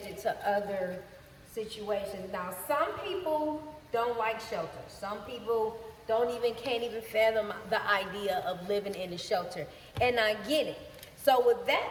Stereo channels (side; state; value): both; identical; correlation 1.00